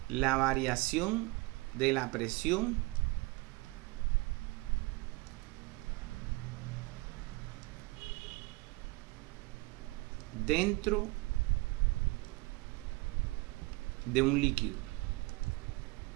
la variación de la presión dentro de un líquido.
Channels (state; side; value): quieter; left; 24.2 dB